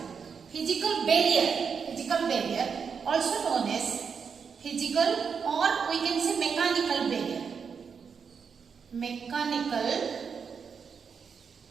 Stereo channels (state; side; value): quieter; left; 6.2 dB